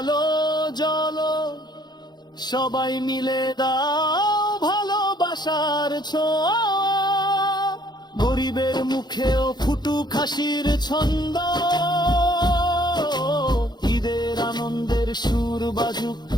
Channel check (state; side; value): late; right; 0.21 ms